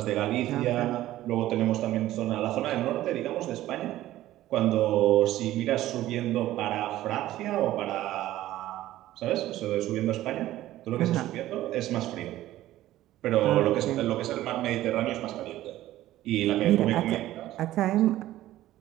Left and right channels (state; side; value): quieter; left; 14.7 dB